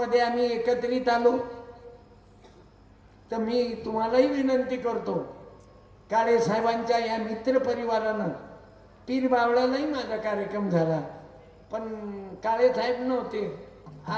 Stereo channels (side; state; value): both; identical; correlation 1.00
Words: आम्ही एकत्रित आलो. तर मी तुम्हालाही विनंती करतो, काळे साहेबांच्या या मित्र परिवारानं पीर बावळ्यालाही माझा कार्यक्रम झाला, पण काळे साहेब नव्हते.